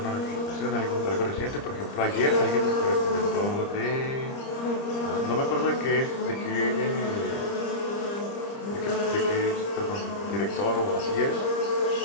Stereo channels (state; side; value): late; right; 30 ms